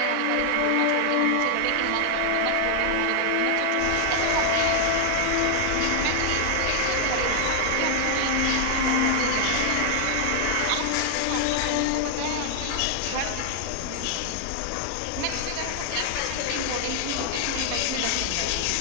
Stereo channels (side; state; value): both; different; correlation 0.00